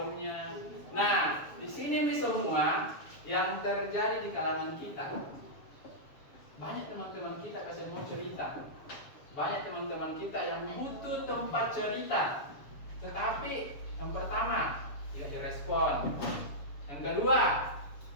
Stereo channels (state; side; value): late; right; 7.0 ms